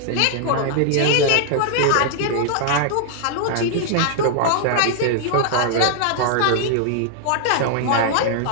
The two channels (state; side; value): different; both; correlation -0.01